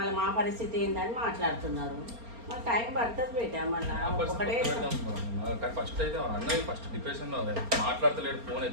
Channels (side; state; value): left; late; 4.3 ms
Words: మా పరిస్థితి ఏందని మాట్లాడుతున్నారు. మళ్ళీ టైం పడుతుంది బేట. మళ్ళీ ఒకటే ఫస్ట్ అయితే అన్నది ఫస్ట్ డిప్రెషన్లో మాట్లాడతలేడు, ఫోన్